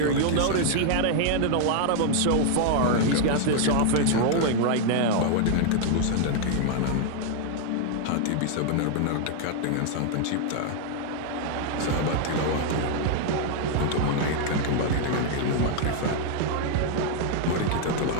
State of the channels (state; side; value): different; both; correlation 0.00